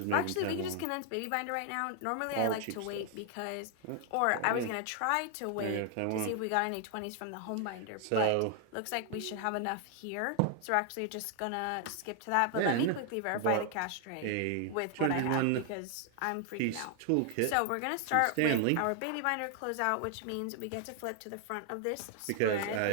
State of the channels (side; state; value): both; different; correlation 0.00